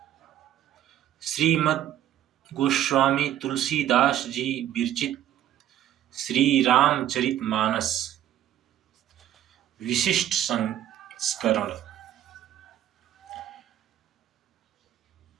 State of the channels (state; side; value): quieter; left; 11.8 dB